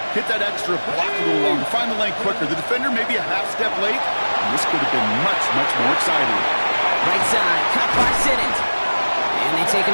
Hit that extra, block a little longer, find the lane quicker. The defender maybe a half step late, and this could have been much, much more exciting. Right side, cut by Sinnott. And they take him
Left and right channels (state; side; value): inverted; both; correlation -1.00